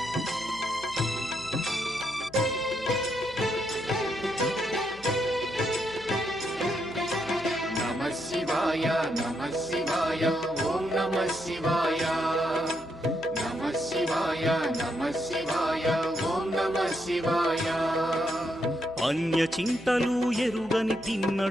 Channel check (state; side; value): noise; left; hum, 21 dB below the sound